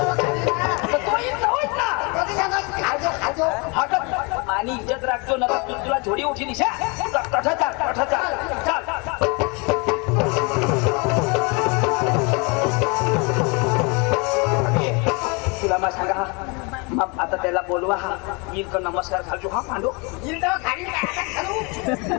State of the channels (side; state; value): right; quieter; 30.2 dB